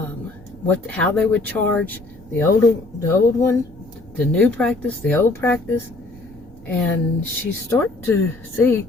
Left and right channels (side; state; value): right; quieter; 3.1 dB